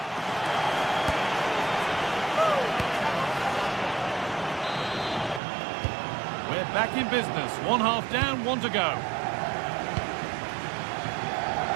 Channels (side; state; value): left; drops out; at 5.4 s